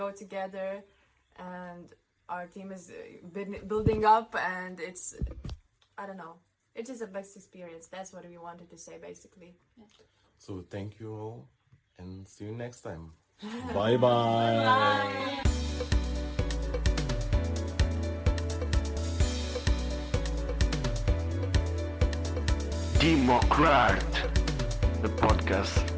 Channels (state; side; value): identical; both; correlation 1.00